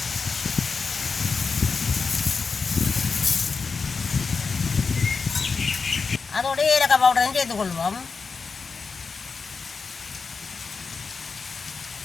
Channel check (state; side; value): quieter; right; 4.9 dB